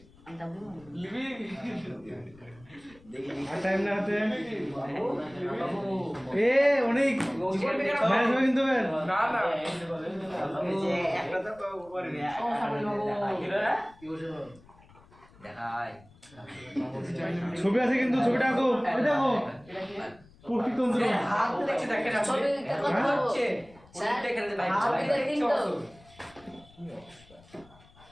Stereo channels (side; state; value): left; noise; rumble, 26 dB below the sound